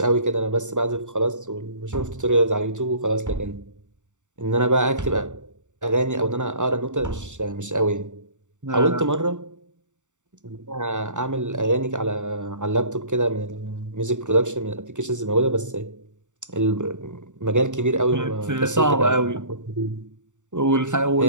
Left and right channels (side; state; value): left; late; 0.85 ms